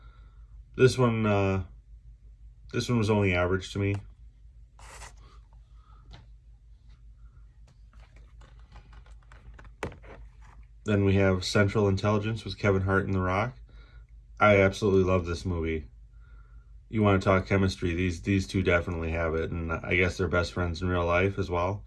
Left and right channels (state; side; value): identical; both; correlation 1.00